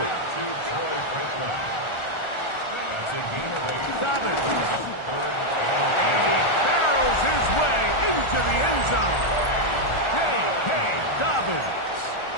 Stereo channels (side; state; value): right; late; 1.4 ms